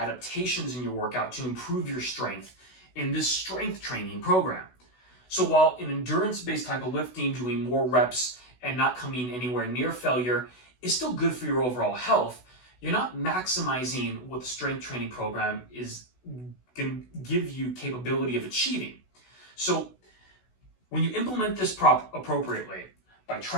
in your workout to improve your strength in this strength training program. So while an endurance-based type of lifting, doing more reps and not coming anywhere near failure is still good for your overall health, you're not maximizing what the strength training program is going to give you capability of achieving. So when you implement this appropriately, by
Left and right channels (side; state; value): right; late; 16 ms